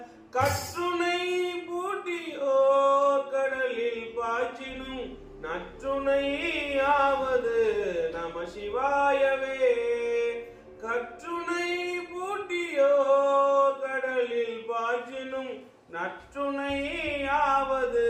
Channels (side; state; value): both; identical; correlation 1.00